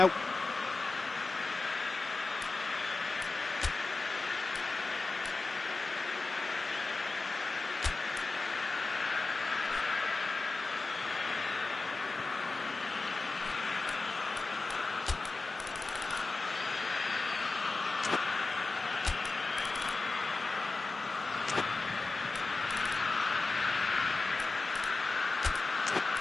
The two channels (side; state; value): right; quieter; 3.6 dB